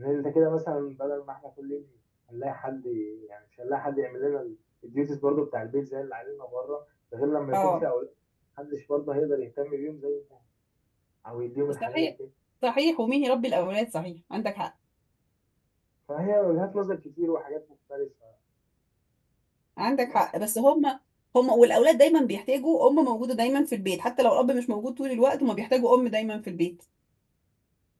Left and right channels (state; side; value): identical; both; correlation 1.00